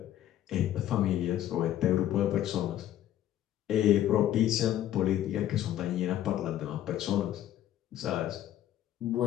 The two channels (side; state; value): right; quieter; 12.3 dB